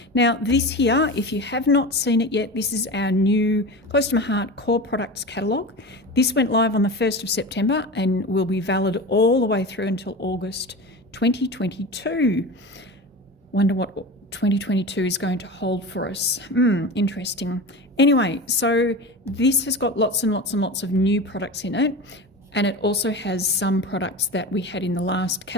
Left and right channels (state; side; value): normal; both; correlation 0.29